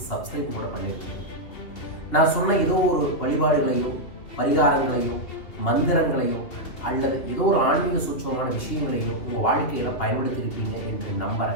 சப்ஸ்கிரைப் கூட பண்ணியிருப்பீங்க. நான் சொன்ன ஏதோ ஒரு வழிபாடுகளையோ பரிகாரங்களையோ மந்திரங்களையோ அல்லது ஏதோ ஒரு ஆன்மீக சூட்சமான விஷயங்களையோ உங்கள் வாழ்க்கையில் பயன்படுத்தியிருப்பீங்க என்று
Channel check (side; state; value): right; late; 2.8 ms